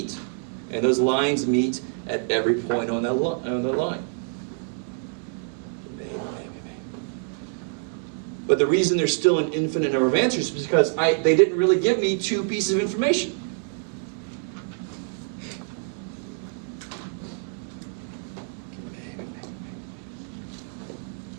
And those lines meet at every point on the line. But the reason there's still an infinite number of answers is because they didn't really give me 2 pieces of information.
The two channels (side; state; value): left; silent; 61 dB below the other